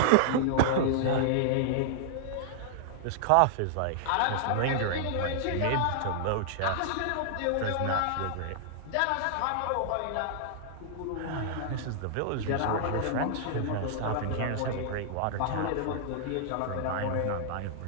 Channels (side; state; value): both; different; correlation -0.01